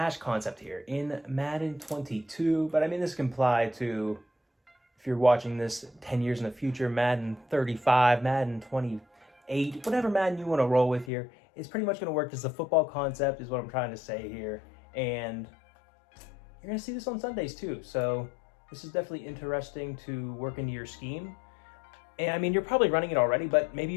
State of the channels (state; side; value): drops out; right; at 11.1 s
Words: concept here in Madden 22, but I mean, this can apply to, if you're watching this 10 years in the future, Madden 35, Madden 28, whatever Madden you want to roll with here. It's pretty much going to work as a football concept is what I'm trying to say here. And you're going to see this on Sundays too. So this is definitely interesting to work into your scheme. And I mean, you're probably running it already, but maybe